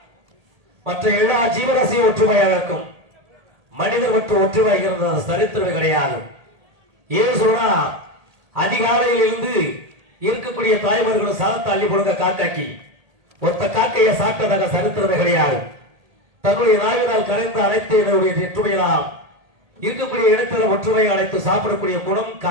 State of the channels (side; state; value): left; late; 1.8 ms